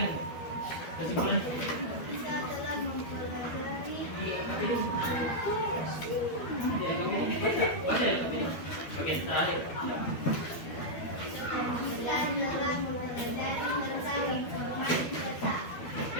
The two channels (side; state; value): right; late; 12 ms